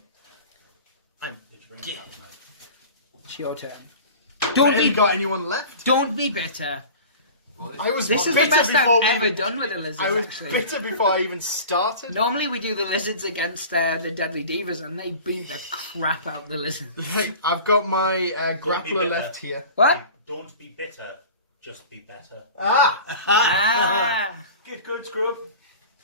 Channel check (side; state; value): both; inverted; correlation -0.38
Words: It's your turn. Have you got anyone left? Don't be bitter. I was This is the bitter best before I've ever we- done with the lizards, I was actually. bitter before I even started. Normally we do the lizards against the Deadly Divas, and they beat the crap out the lizards. Right, I've got my be grappler bitter. left here. What? Don't be bitter, just be better. Ah! Get good, scrub.